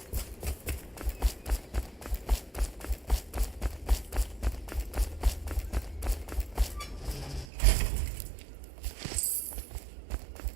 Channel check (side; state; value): left; drops out; at 7.5 s